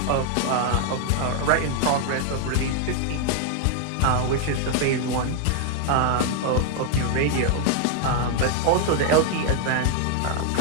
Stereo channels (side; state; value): both; different; correlation 0.00